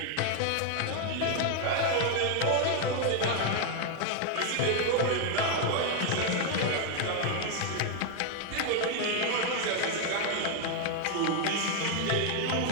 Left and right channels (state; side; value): different; both; correlation 0.01